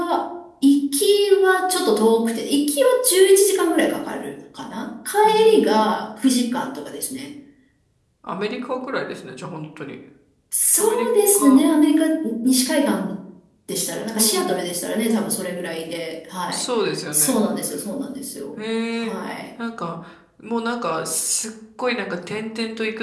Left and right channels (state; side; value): identical; both; correlation 1.00